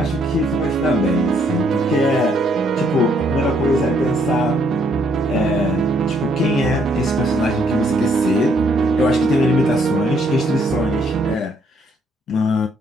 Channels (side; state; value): both; normal; correlation 0.69